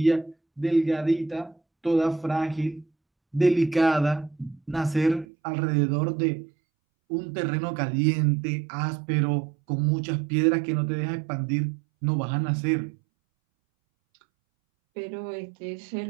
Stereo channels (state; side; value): drops out; left; at 5.2 s